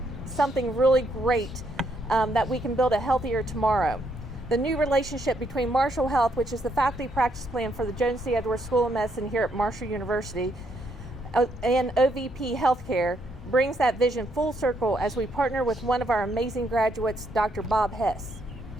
something really great, that we can build a healthier tomorrow. The new relationship between Marshall Health, which is the faculty practice plan for the Joan C. Edwards School of Medicine here at Marshall University, and OVP Healthcare brings that vision full circle as we partner with one of our amazing graduates, Dr. Bob Hess.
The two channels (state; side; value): normal; both; correlation 0.74